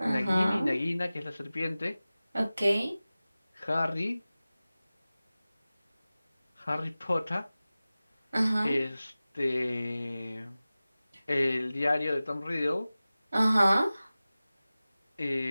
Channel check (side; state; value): both; inverted; correlation -0.97